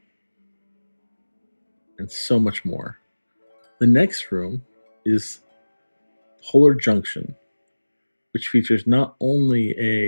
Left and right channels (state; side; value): inverted; both; correlation -1.00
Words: and so much more. The next room is Polar Junction, which features not only